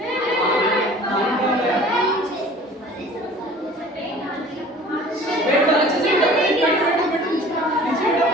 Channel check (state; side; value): normal; both; correlation 0.46